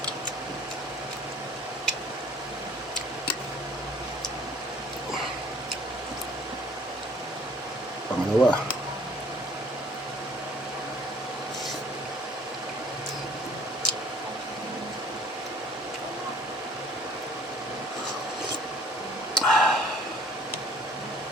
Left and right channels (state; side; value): normal; both; correlation 0.55